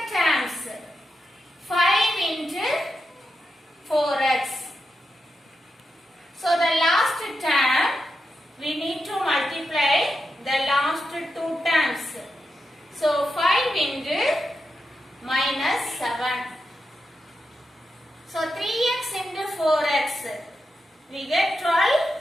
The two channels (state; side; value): normal; both; correlation 0.87